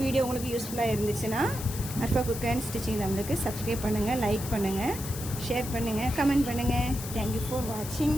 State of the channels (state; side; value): noise; left; hiss, 10 dB below the sound